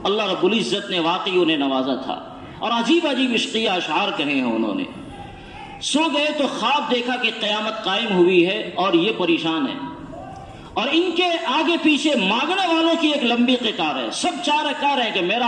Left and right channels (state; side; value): identical; both; correlation 1.00